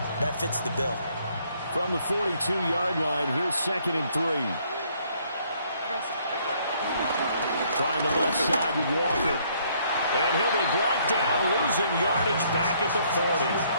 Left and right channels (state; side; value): inverted; both; correlation -0.66